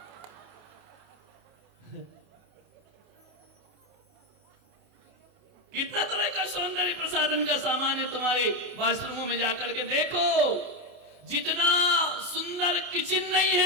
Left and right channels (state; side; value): late; left; 28 ms